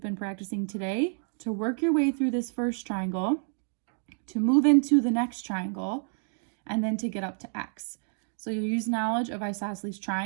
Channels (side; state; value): left; silent; 59 dB below the other